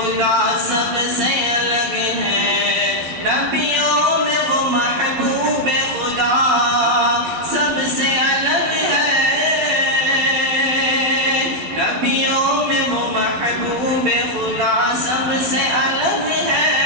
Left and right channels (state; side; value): late; left; 12 ms